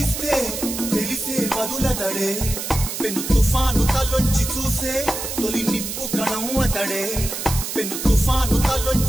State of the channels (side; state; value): right; noise; hiss, 5 dB below the sound